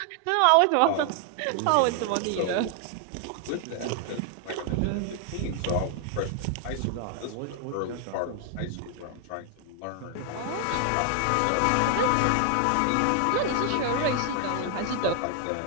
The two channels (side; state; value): both; different; correlation 0.00